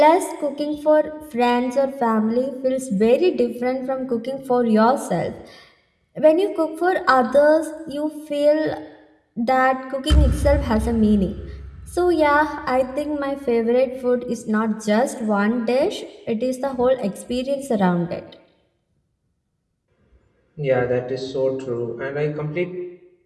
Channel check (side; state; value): both; identical; correlation 1.00